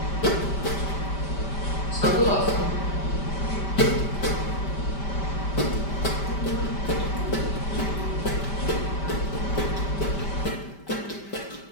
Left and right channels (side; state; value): right; late; 5.1 ms